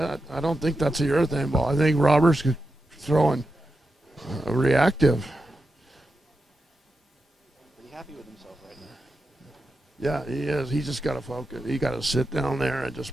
I don't think that's a urethane ball. I think Roberts throwing a reactive. Pretty happy with himself right now. Yeah, he is. He just got to focus. He got to sit down there and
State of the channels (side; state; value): both; normal; correlation 0.89